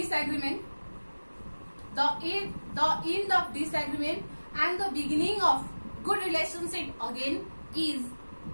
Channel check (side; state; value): both; inverted; correlation -1.00